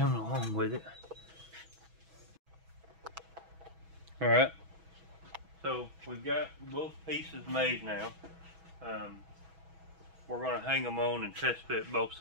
along with it. Alright, so we've got both pieces made now. We're going to hang them on and test fit both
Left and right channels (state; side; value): late; left; 6.1 ms